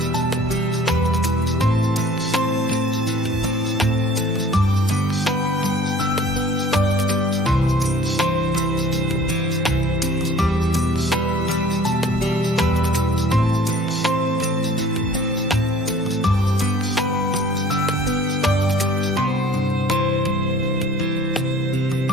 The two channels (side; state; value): both; normal; correlation 0.49